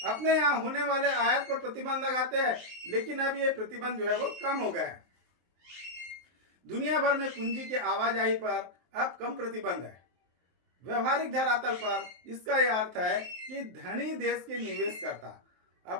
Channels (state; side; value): late; left; 23 ms